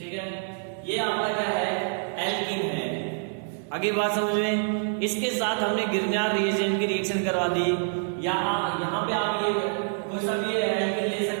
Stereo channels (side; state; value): left; silent; 57 dB below the other